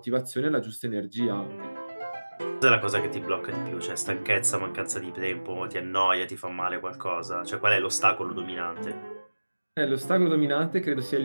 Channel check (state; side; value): inverted; both; correlation -1.00